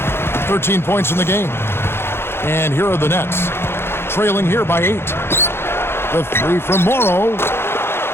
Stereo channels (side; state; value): right; late; 0.11 ms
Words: 13 points in the game. And here are the Nets. Trailing here by 8. The 3 from Morrow.